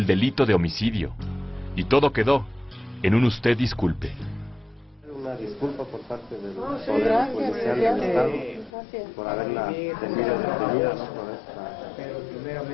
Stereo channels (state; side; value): drops out; right; at 8.7 s